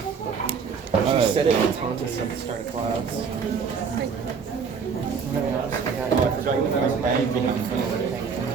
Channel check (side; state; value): left; quieter; 5.9 dB